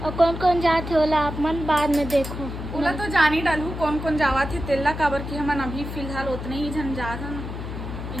कौन कौन जाते होला आप मन बाद में देखो। ओला तो जान ही डालू कौन कौन जावा थे तेला काबर की हमन अभी फिलहाल उतने ही जन जात हन।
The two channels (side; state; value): left; noise; hum, 7 dB below the sound